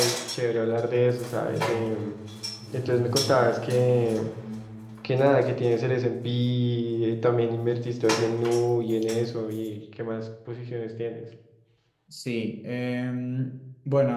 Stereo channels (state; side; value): identical; both; correlation 1.00